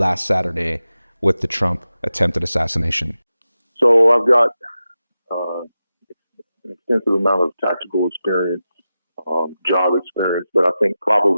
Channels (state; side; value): inverted; both; correlation -0.92